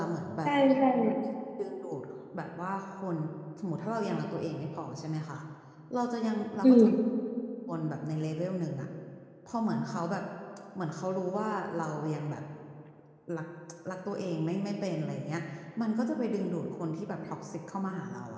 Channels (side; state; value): both; identical; correlation 1.00